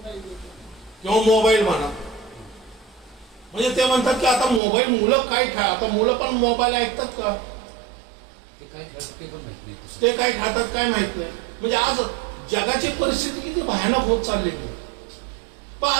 किंवा मोबाईल म्हणा, म्हणजे ते म्हणतात की आता मोबाईल मुलं काय खा, आता मुलं पण मोबाईल ऐकतात का? ते काय खातात ते पण माहित नाही. ते काय खातात काय माहित नाही. म्हणजे आज जगाची परिस्थिती किती भयानक होत चाललेली. पण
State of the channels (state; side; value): drops out; left; at 4.6 s